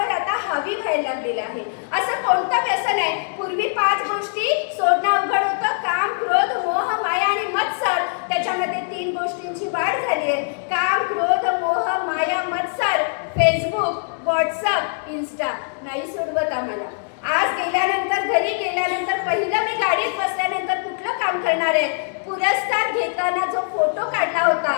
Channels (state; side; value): silent; right; digital silence